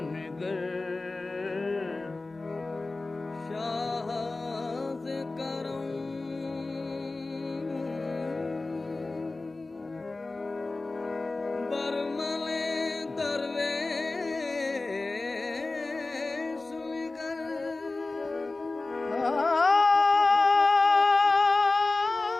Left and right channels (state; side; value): quieter; right; 3.3 dB